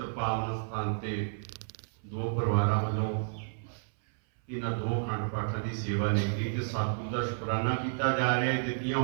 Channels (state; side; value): silent; left; 57 dB below the other